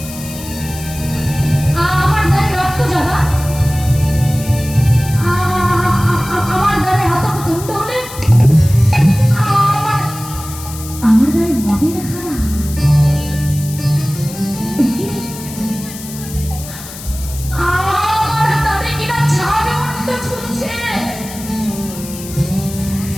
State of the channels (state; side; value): noise; left; hiss, 13 dB below the sound